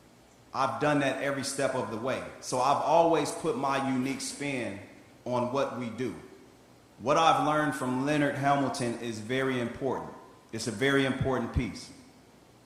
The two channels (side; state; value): both; identical; correlation 1.00